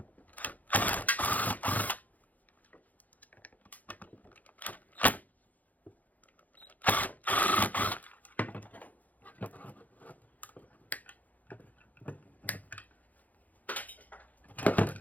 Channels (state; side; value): late; right; 0.079 ms